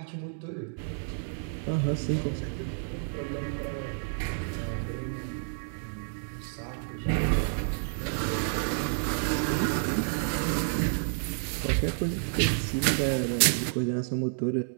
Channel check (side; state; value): left; silent; digital silence